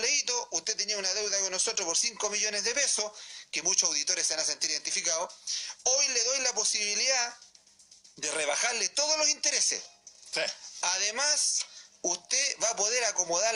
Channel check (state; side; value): identical; both; correlation 1.00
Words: usted tenía una deuda con nosotros por 5 millones de pesos, que muchos auditores se van a sentir identificados, hoy le doy la posibilidad de rebajarle todos los intereses. Sí. Además, usted va a poder acomodar